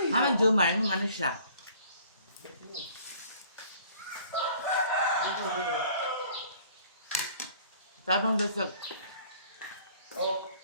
Haman Jumar, yung ano siya? Tabang dasag. Oh,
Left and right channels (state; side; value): inverted; both; correlation -0.55